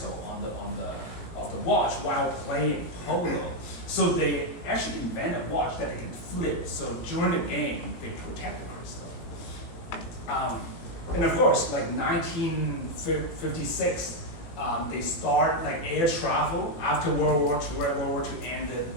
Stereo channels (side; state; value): right; late; 17 ms